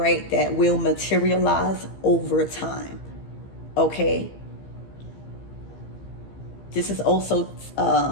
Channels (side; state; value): right; late; 15 ms